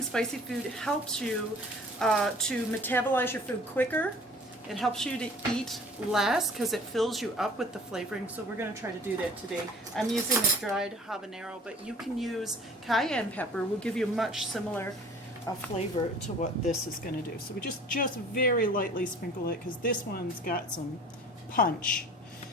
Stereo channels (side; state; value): both; normal; correlation 0.47